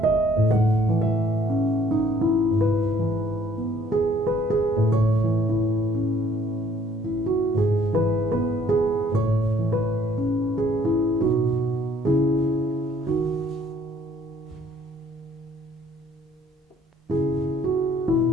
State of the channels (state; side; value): normal; both; correlation 0.61